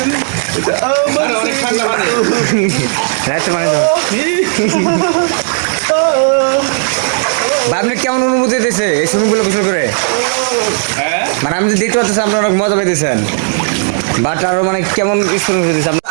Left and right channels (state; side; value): silent; left; digital silence